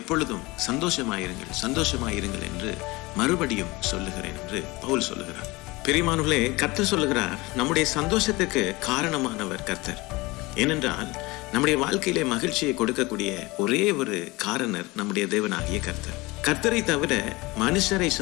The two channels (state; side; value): quieter; right; 22.7 dB